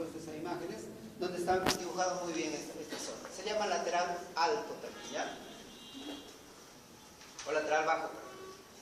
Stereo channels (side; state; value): both; identical; correlation 1.00